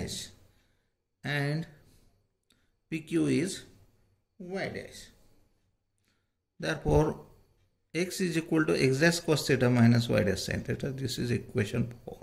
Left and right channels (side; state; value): both; identical; correlation 1.00